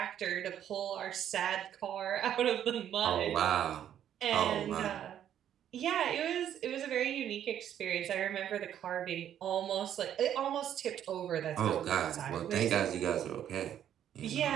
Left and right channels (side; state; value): left; quieter; 10.3 dB